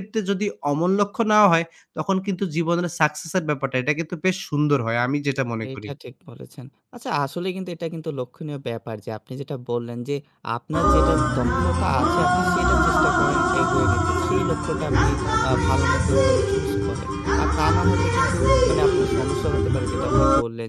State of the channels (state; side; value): identical; both; correlation 1.00